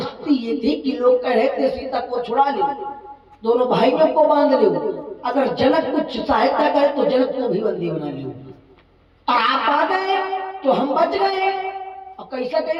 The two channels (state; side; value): identical; both; correlation 1.00